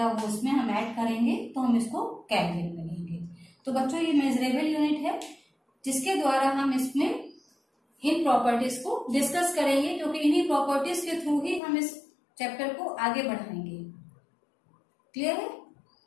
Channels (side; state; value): right; drops out; at 11.6 s